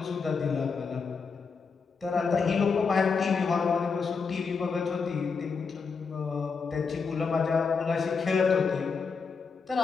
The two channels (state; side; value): quieter; right; 5.2 dB